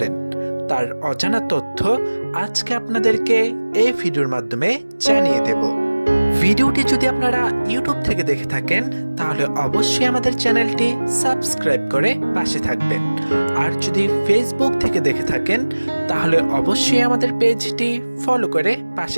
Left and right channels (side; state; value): both; inverted; correlation -1.00